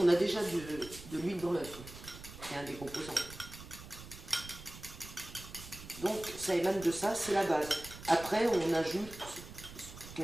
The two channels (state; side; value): noise; right; rumble, 14 dB below the sound